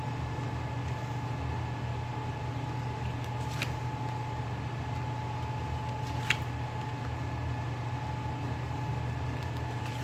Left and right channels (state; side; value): identical; both; correlation 1.00